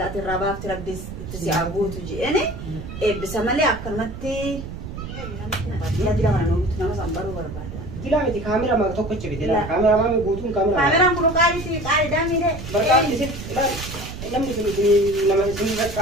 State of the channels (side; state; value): right; noise; rumble, 9 dB below the sound